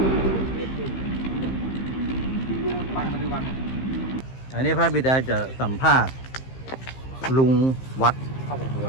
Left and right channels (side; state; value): right; late; 15 ms